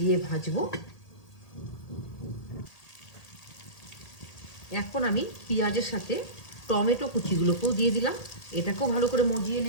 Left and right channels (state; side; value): late; right; 1.8 ms